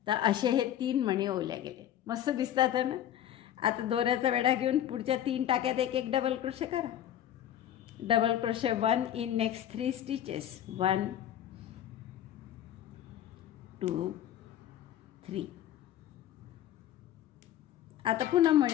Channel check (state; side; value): quieter; right; 11.2 dB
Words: तर असे हे 3 मणी ओवल्या गेले. मस्त दिसतात आहे ना. आता दोऱ्याचा वेढा घेऊन पुढच्या 3 टाक्यात 1 1 डबल क्रोशे करा. Double crochet 1 in next 3 stitches, 1 2 3. आता पुन्हा